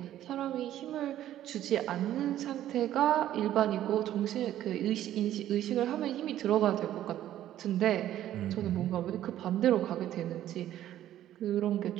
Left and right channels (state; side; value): quieter; left; 12.4 dB